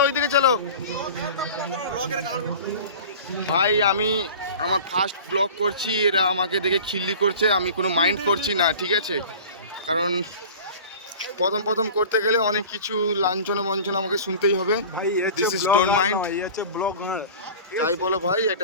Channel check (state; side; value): inverted; both; correlation -0.39